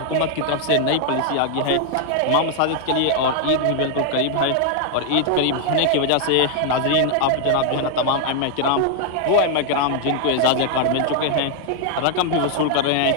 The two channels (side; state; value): both; different; correlation 0.00